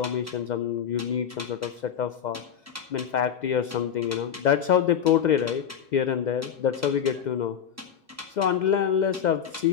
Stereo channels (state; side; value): quieter; right; 8.5 dB